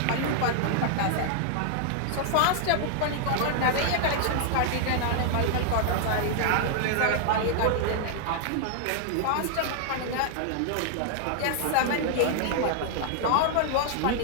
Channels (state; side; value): different; both; correlation 0.00